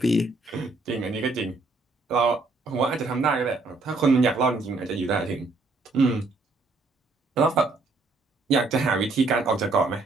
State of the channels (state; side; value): quieter; left; 3.4 dB